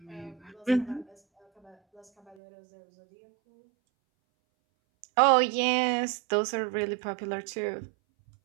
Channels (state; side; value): drops out; left; at 2.4 s